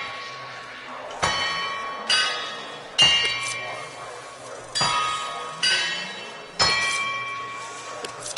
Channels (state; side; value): identical; both; correlation 1.00